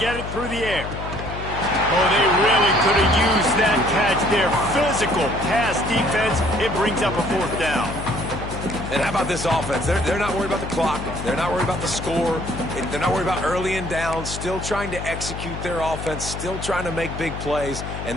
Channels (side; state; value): left; noise; hum, 8 dB below the sound